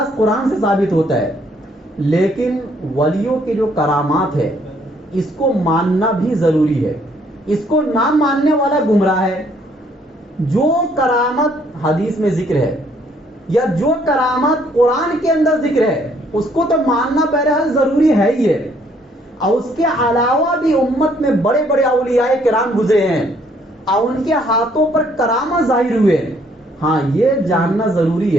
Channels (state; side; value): normal; both; correlation 0.65